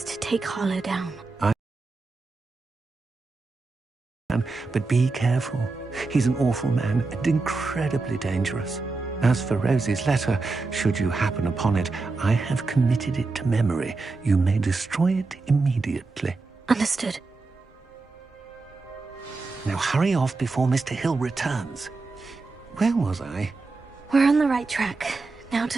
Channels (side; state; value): left; quieter; 3.8 dB